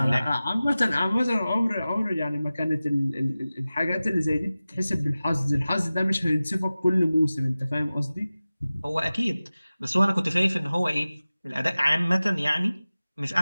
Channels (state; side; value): inverted; both; correlation -0.96